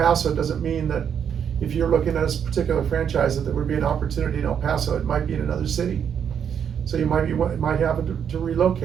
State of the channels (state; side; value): quieter; left; 8.0 dB